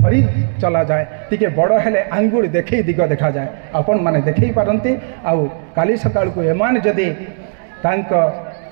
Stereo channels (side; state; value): left; silent; digital silence